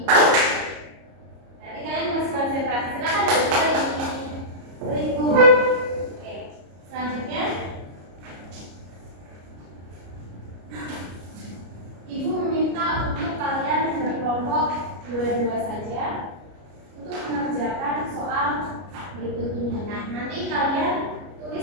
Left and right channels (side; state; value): left; late; 33 ms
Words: Nanti kalian harus konsentrasi. Silakan duduk lagi. Beribu. Oke. Selanjutnya, Ibu meminta untuk kalian berkelompok